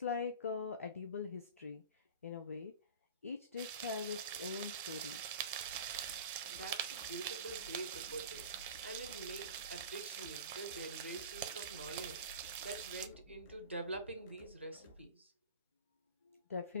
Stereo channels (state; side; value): inverted; both; correlation -0.34